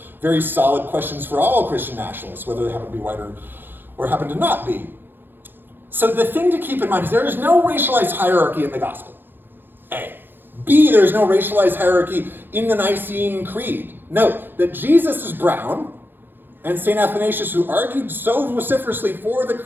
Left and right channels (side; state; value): left; late; 0.097 ms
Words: very solid questions for all Christian nationalists, whether they happen to be white or happen to not be. So the thing to keep in mind is there is no racialized hierarchy in the gospel, A. B, there's no racialized hierarchy in the Nicene Creed. Note that Jesus is brown, and St. Athanasius, who argued so vociferously for the